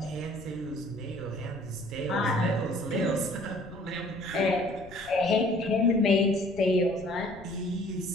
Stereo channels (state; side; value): noise; left; rumble, 19 dB below the sound